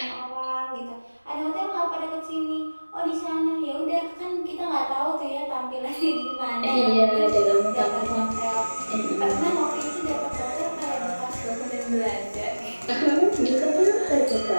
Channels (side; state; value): both; inverted; correlation -1.00